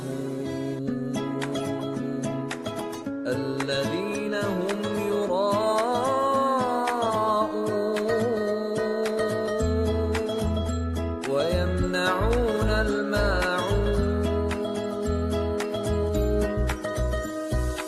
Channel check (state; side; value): identical; both; correlation 1.00